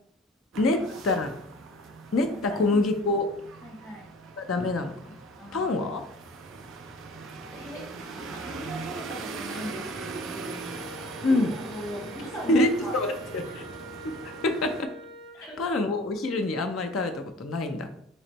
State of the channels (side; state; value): both; normal; correlation 0.46